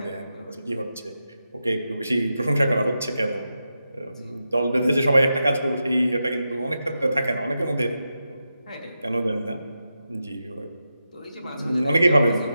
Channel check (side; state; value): both; inverted; correlation -0.89